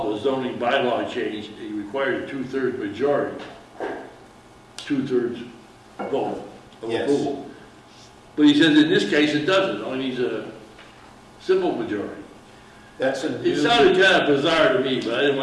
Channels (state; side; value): identical; both; correlation 1.00